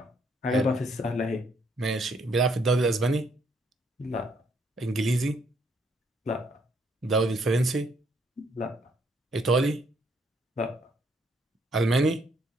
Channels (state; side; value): normal; both; correlation 0.69